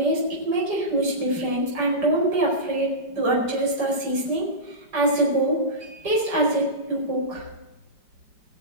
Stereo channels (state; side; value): late; left; 4.9 ms